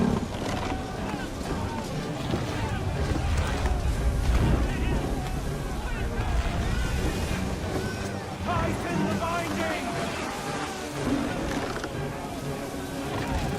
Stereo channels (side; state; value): both; identical; correlation 1.00